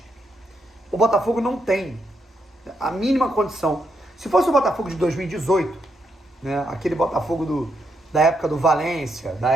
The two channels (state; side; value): normal; both; correlation 0.80